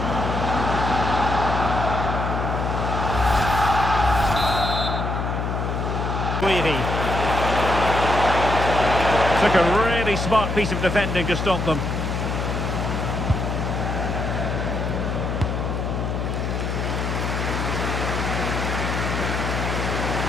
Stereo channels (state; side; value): noise; left; hum, 2 dB below the sound